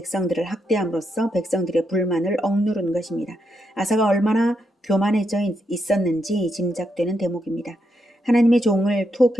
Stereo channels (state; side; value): normal; both; correlation 0.81